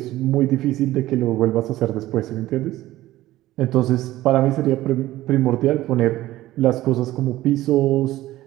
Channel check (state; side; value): quieter; left; 15.8 dB